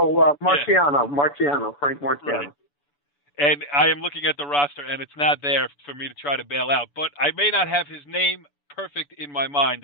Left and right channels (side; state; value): right; late; 6.9 ms